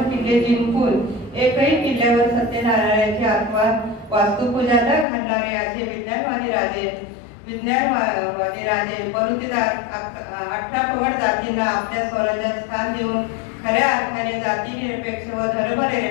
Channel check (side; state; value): right; drops out; at 5.1 s